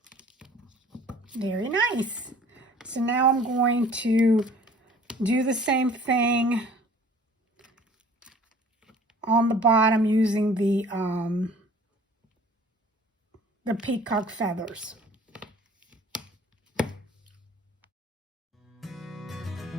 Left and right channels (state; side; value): normal; both; correlation 0.50